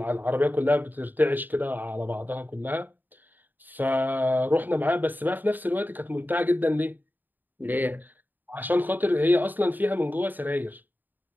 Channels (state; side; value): late; left; 0.089 ms